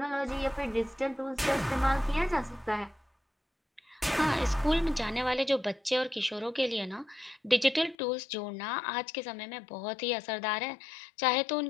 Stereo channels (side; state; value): right; drops out; at 8.0 s